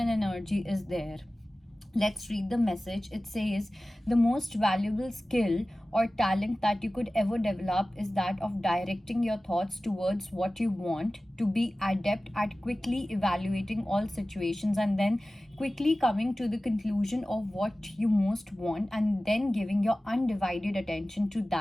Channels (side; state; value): both; normal; correlation 0.96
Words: energy is there. Let's read the message. It says, the most valuable skill or talent that you could ever develop is that of directing your thoughts towards what you want, to be adept at quickly evaluating all situations and then quickly coming to the conclusion of what you most want and then giving your undivided attention to